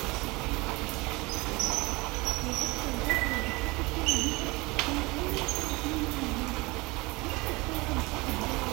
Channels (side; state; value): left; quieter; 24.0 dB